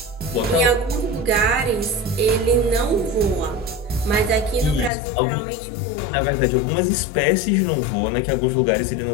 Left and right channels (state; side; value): drops out; right; at 4.9 s